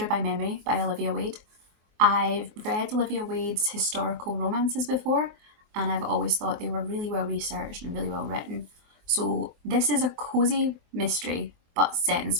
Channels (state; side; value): late; left; 23 ms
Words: by Memory by Olivia Wade. I've read Olivia Wade's historical romances before, and I've always thought they were really well researched and really well written. So this is a cozy mystery, but set in